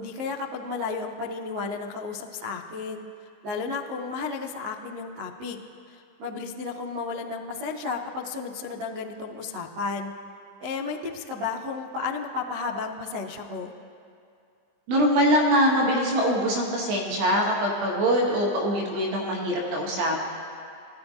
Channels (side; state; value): left; late; 19 ms